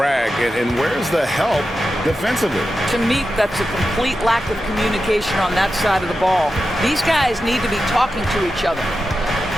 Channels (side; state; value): both; normal; correlation 0.91